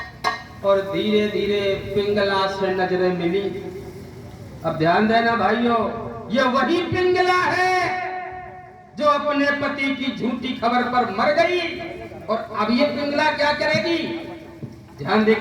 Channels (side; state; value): both; identical; correlation 1.00